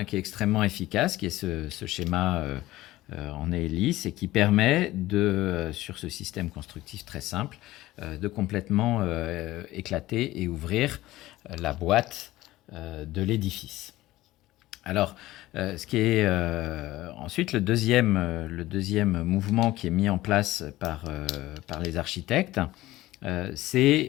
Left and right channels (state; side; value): quieter; right; 16.8 dB